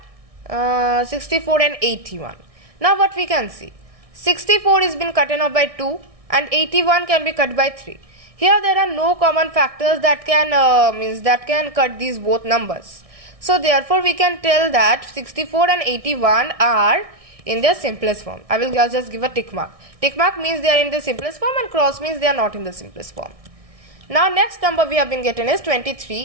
64 and 81. Now what we can see? 64 is been cutten off by 2 and 81 can be cut by 3. Here there are no common factors that can cut these both numbers. So therefore we can tell that 64 and 81 are in their simplest form. I will just give a tick mark. Tick mark means they are in the simplest form and cross means they are not in the simplest form. Now next number we have been getting is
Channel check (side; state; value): left; late; 1.6 ms